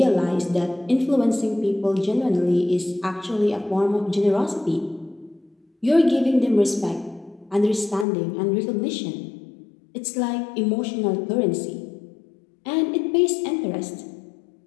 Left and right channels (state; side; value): drops out; right; at 8.1 s